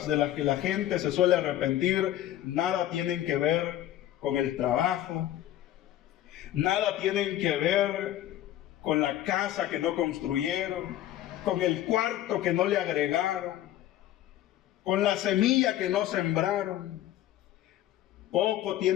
de las que la gente se suele arrepentir, nada tienen que ver con el trabajo, nada tienen que ver con la casa que no construyeron, con el cuarto que no le agregaron, con la semilla que no sembraron. Poco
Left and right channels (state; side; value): quieter; right; 13.0 dB